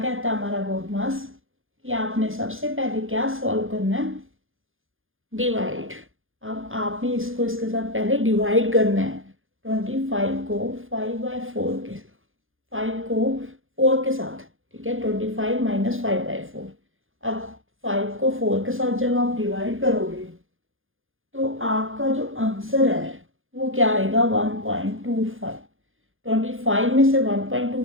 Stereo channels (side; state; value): left; late; 0.59 ms